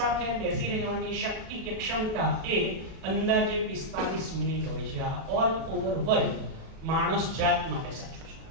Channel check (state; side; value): late; left; 37 ms